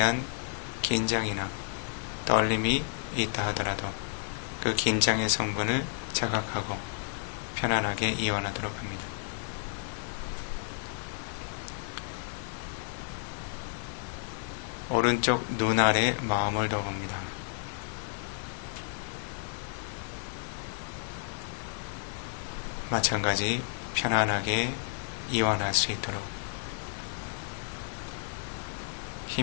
긴장이나 떨림이 있다 하더라도 그 긴장의 성분을 자각하고 편안하게 이완하도록 합니다. 오른쪽 눈 아래 마음을 둬봅니다. 마찬가지 편안하게 이완할 수 있도록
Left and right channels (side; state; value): right; silent; digital silence